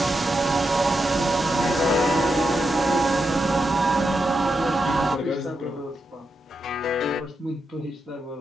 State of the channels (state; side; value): normal; both; correlation 0.86